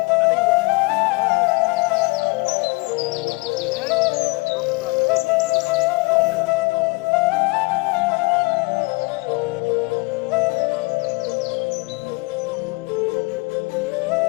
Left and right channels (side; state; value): right; quieter; 26.5 dB